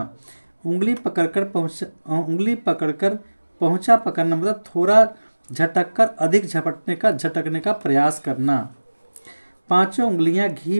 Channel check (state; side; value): inverted; both; correlation -1.00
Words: उंगली पकड़कर पहुंचा पकड़ना मतलब थोड़ा झटककर अधिक झटकने का प्रयास करना, पांचों उंगलियां घी